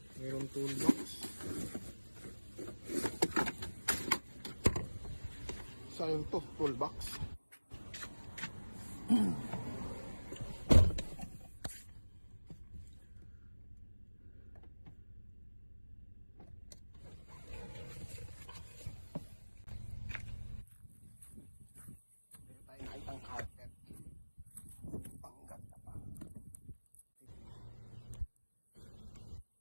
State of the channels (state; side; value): inverted; both; correlation -1.00